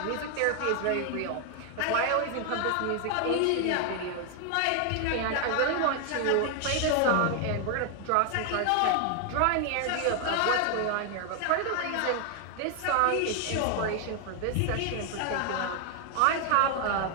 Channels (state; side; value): different; both; correlation 0.00